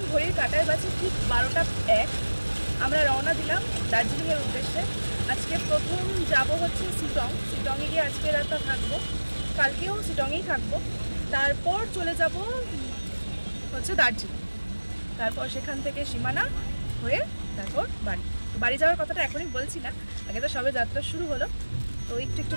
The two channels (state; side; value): inverted; both; correlation -1.00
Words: ঘড়ির কাঁটায় বাজে ঠিক 12টা 1। আমরা রওনা দিলাম দার্জিলিংয়ের উদ্দেশ্যে। আজকে প্রথম যাব হচ্ছে শিটংয়ে গিয়ে আজকে রাতটা থাকবো, কালকেও শিটংয়েই থাকবো। তারপর চলে যাব হচ্ছে দার্জিলিং, তারপর সেখান থেকে সীমানা হয়ে তারপর বাড়ি যাওয়ার কথাটা এখনই বলছি না, আগে তো সবে যাত্রা শুরু হলো, তো একটু একটু